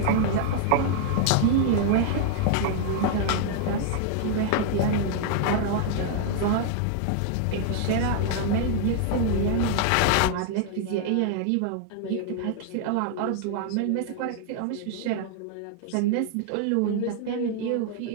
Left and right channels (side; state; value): both; different; correlation 0.00